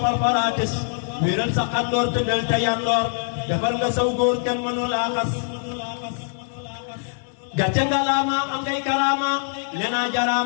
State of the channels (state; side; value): silent; right; 63 dB below the other